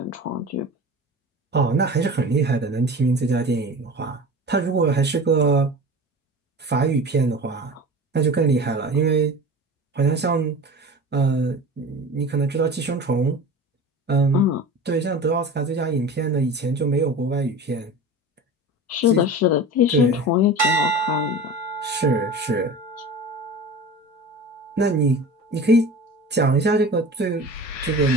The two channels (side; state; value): both; normal; correlation 0.34